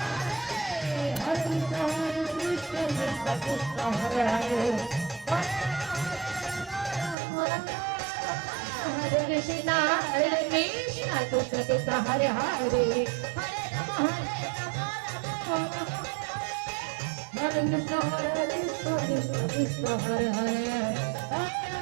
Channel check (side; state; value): left; drops out; at 7.2 s